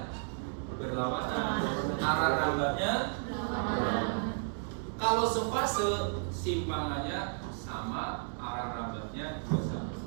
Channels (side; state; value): left; silent; 56 dB below the other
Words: berlawanan, arah rambatnya berlawanan. Kalau sefase, simpangannya sama, arah rambatnya juga sama.